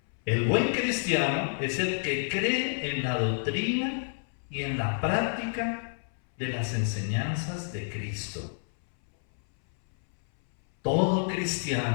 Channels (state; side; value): silent; right; 59 dB below the other